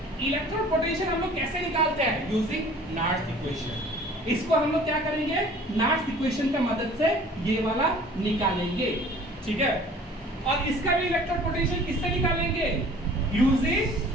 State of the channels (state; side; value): normal; both; correlation 0.49